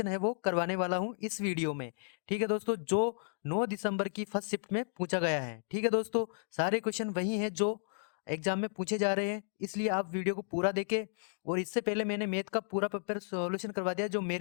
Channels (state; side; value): silent; right; digital silence